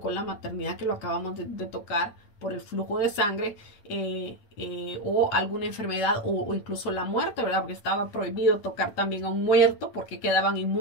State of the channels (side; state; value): right; late; 8.3 ms